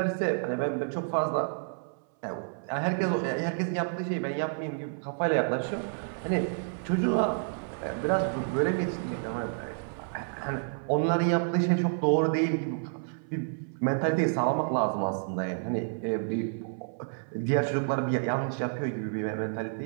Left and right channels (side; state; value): left; silent; 58 dB below the other